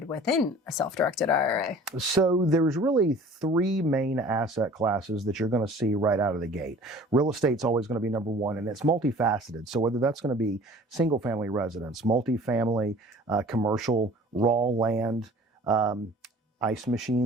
within a self-directed IRA? So there's really three main asset classes that you're going to see right out of the gate. Real estate's always going to be number one, and it's multifaceted. So whether that's going to be single family residence, multifamily, commercial, raw land, ice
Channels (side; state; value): both; normal; correlation 0.47